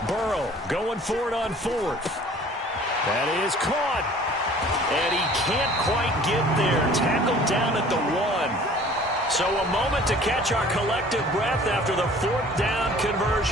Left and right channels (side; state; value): both; normal; correlation 0.50